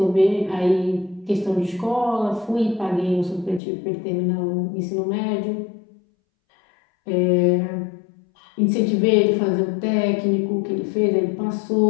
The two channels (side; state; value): right; drops out; at 3.6 s